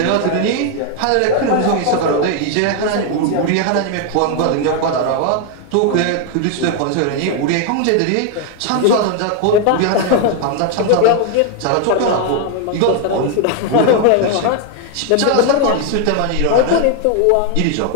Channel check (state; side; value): different; both; correlation 0.01